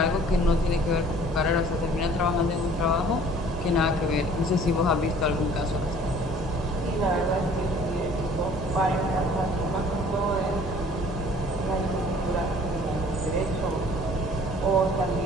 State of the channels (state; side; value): normal; both; correlation 0.52